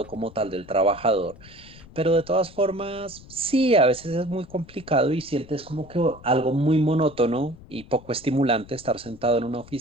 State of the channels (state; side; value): noise; left; rumble, 21 dB below the sound